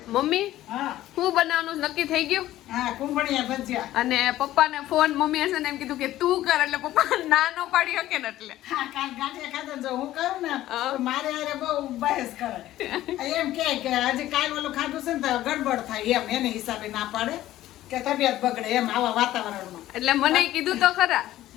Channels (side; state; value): right; quieter; 14.4 dB